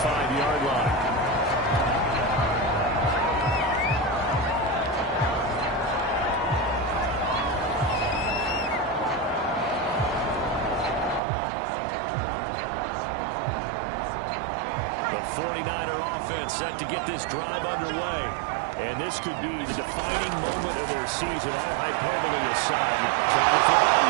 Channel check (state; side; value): drops out; left; at 11.2 s